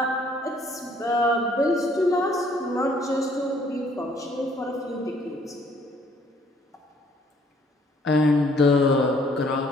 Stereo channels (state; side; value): normal; both; correlation 0.62